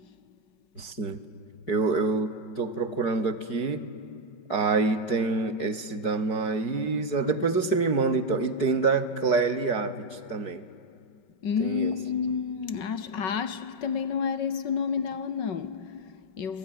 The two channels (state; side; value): late; right; 4.7 ms